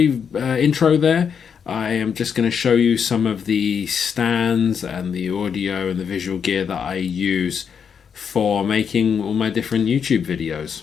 intro there. I am just going to show you some of the stands and the audio and the visual gear that I use for making all my different YouTube videos.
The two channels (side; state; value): right; quieter; 7.0 dB